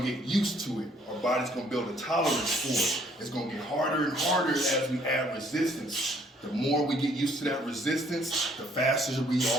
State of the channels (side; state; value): both; normal; correlation 0.63